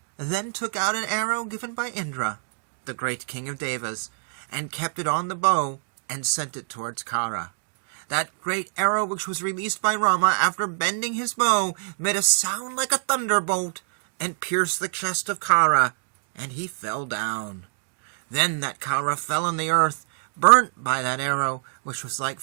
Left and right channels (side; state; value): left; silent; digital silence